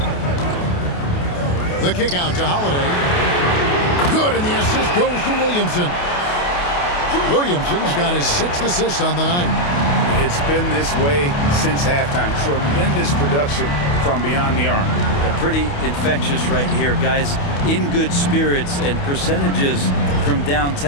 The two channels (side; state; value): right; late; 28 ms